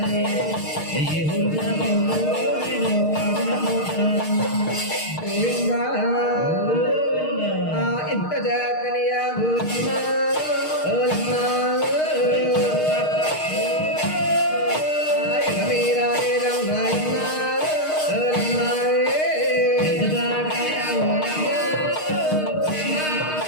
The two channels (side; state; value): right; late; 6.5 ms